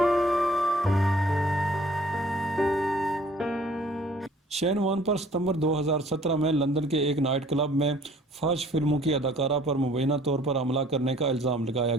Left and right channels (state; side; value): normal; both; correlation 0.56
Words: شین وان پر ستمبر 2017 میں لندن کے ایک نائٹ کلب میں فحش فلموں کی اداکارہ پر مبینہ طور پر حملہ کرنے کا الزام لگایا